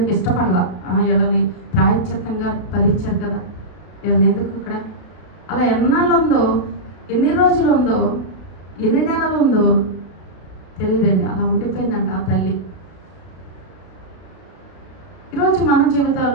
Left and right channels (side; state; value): right; late; 33 ms